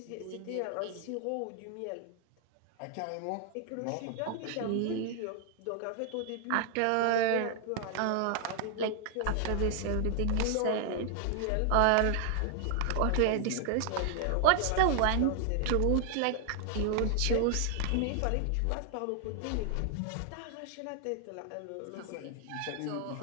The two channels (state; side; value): different; both; correlation 0.00